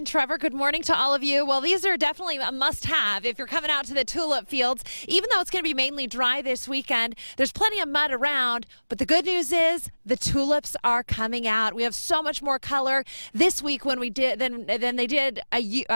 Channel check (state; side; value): inverted; both; correlation -1.00